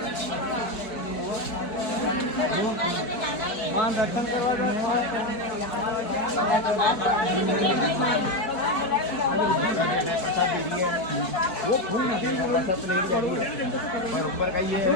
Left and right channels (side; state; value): right; late; 4.6 ms